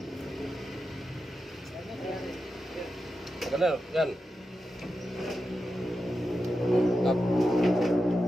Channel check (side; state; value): both; normal; correlation 0.89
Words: Kenal kan? Mantap.